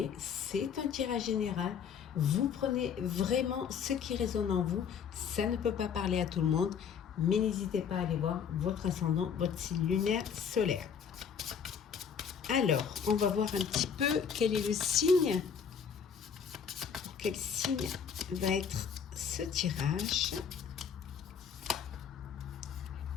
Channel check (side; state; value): right; quieter; 7.2 dB